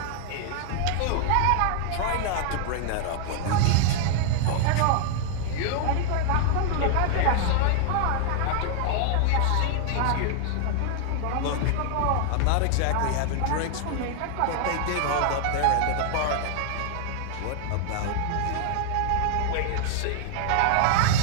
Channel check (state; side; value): different; both; correlation 0.00